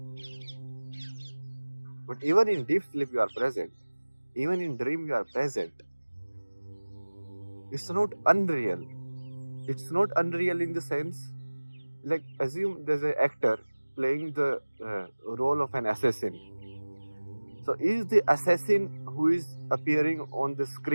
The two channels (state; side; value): inverted; both; correlation -1.00